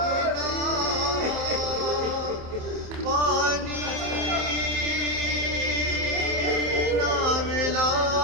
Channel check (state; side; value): late; left; 27 ms